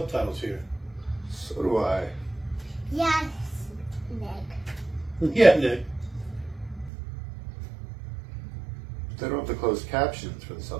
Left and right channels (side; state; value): left; drops out; at 6.9 s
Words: here. So do I. Yes, Nick. Yeah, Nick. They don't have the closed captions for the